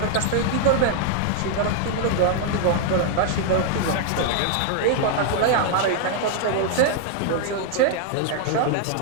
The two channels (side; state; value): both; different; correlation 0.00